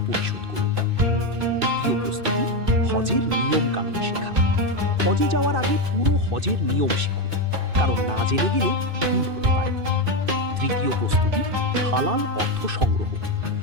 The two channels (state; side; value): late; left; 2.6 ms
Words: পরিশোধ করুন। দ্বিতীয় প্রস্তুতি, হজের নিয়ম কানুন শেখা। হজে যাওয়ার আগে পুরো হজের নিয়ম শিখুন, কারণ না জেনে গেলে ভুল হতে পারে। তৃতীয় প্রস্তুতি, হালাল অর্থ সংগ্রহ।